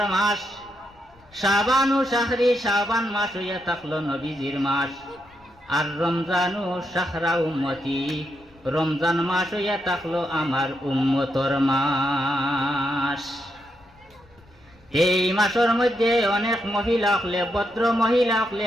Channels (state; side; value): noise; left; rumble, 29 dB below the sound